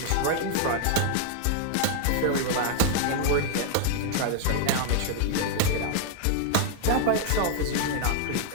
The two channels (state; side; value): different; both; correlation 0.00